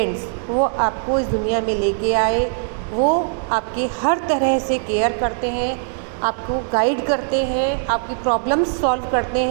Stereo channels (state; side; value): silent; left; digital silence